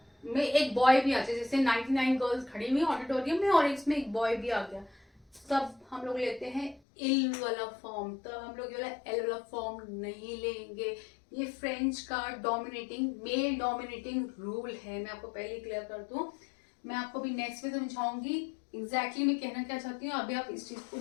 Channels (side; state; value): right; drops out; at 6.8 s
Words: में एक बॉय भी आ जाए, जैसे 99 गर्ल्स खड़ी हुई ऑडिटोरियम में और इसमें एक बॉय भी आ गया, तब हम लोग लेते हैं इल वाला फॉर्म, तब हम लोग ये वाला एल वाला फॉर्म नहीं लेंगे। ये फ्रेंच का डोमिनेटिंग, मेल डोमिनेटिंग रूल है, मैं आपको पहले क्लियर कर दूं, मैं आपको भी नेक्स्ट में समझाऊंगी एग्जैक्टली मैं कहना क्या चाहती हूँ। अभी आप इस चीज को